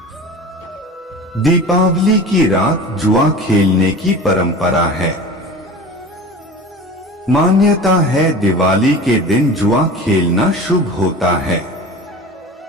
दीपावली की रात जुआ खेलने की परंपरा है। मान्यता है दिवाली के दिन जुआ खेलना शुभ होता है।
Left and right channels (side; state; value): both; normal; correlation 0.36